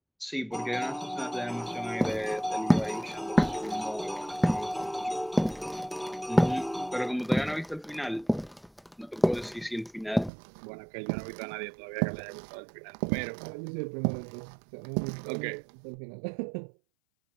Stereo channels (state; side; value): drops out; left; at 10.3 s